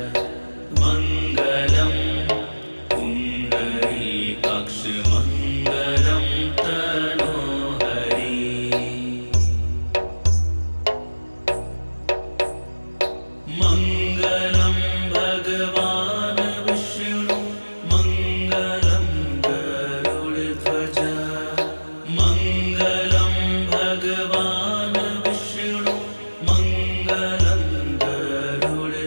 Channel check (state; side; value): inverted; both; correlation -1.00